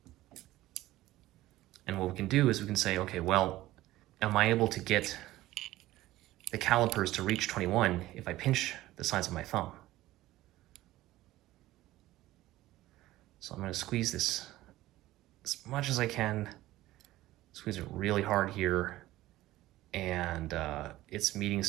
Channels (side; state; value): left; quieter; 16.3 dB